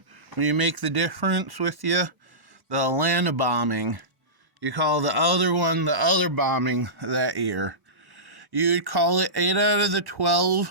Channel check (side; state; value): left; late; 1.1 ms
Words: when you make the difference with you the Atlanta bombing. You call the other one the other bombing that year. You'd call it 8 out of the